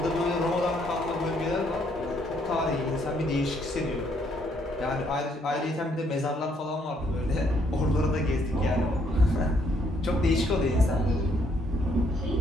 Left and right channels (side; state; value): both; normal; correlation 0.70